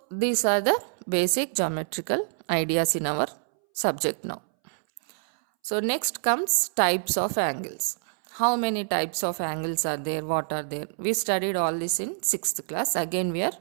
these are the basic geometrical ideas in our subject now. So next comes types of angles. How many types of angles are there, what are there? We studied all this in 6th class. Again we are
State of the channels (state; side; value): silent; left; 61 dB below the other